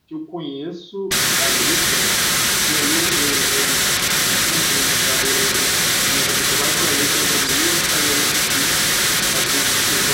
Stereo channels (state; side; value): identical; both; correlation 1.00